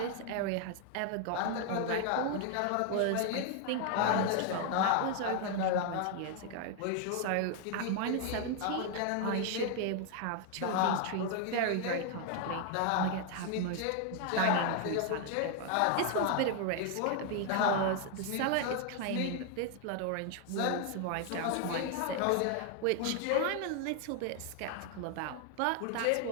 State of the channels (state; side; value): different; both; correlation 0.00